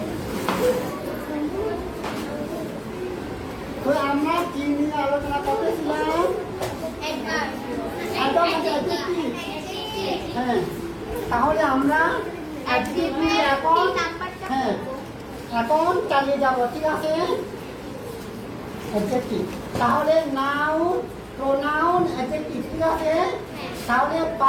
তো আমরা কি নিয়ে আলোচনা করতেছিলাম? হ্যাঁ, তাহলে আমরা এখন চালিয়ে যাব, ঠিক আছে? অ্যাডজেক্টিভ, তাহলে নাউন, প্রোনাউন, অ্যাডজেক্টিভ, ঠিক আছে? তাহলে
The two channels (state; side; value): identical; both; correlation 1.00